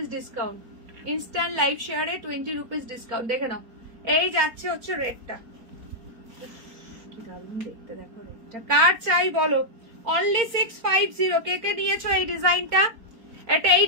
ডিসকাউন্ট। ইনস্ট্যান্ট লাইভ শেয়ারে 20 রুপিস ডিসকাউন্ট। দেখে নাও, এই যাচ্ছে হচ্ছে রেডটা। কি দারুণ দেখতে দেখো রেডটা। কার চাই বলো। অনলি 650। কে কে নিয়েছো এই ডিজাইনটা? এটা এই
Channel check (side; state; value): left; late; 4.4 ms